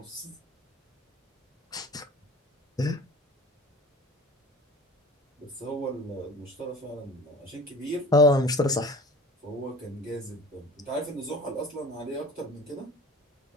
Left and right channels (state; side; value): normal; both; correlation 0.42